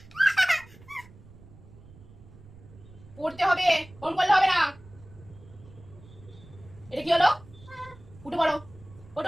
পড়তে হবে ওরম করলে হবে না এটা কি হলো উঠে পড়ো ওটো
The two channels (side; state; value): right; noise; rumble, 21 dB below the sound